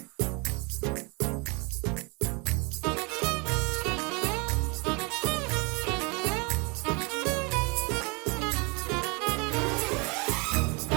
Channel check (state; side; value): quieter; left; 30.4 dB